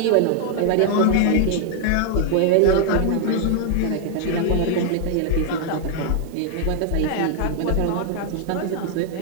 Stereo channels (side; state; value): both; different; correlation 0.00